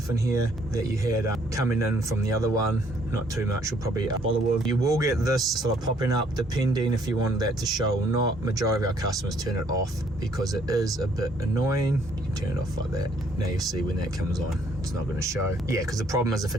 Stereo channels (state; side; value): normal; both; correlation 0.64